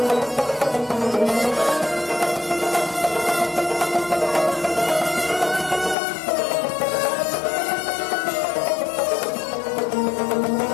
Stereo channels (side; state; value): right; drops out; at 6.0 s